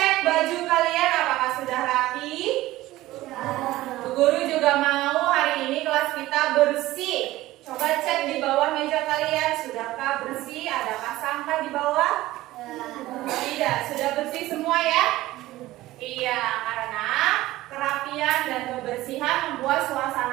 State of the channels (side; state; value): left; quieter; 16.8 dB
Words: baju kalian apakah sudah rapi? Bu Guru juga mau hari ini kelas kita bersih. Coba cek di bawah meja kalian, sudahkah bersih? Adakah sampah di bawah? Tidak, sudah bersih semua ya? Iya, karena kerapian dan kebersihan membuat